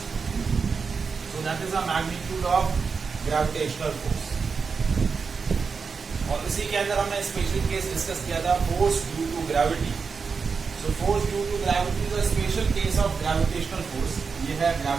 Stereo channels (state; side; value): quieter; left; 5.3 dB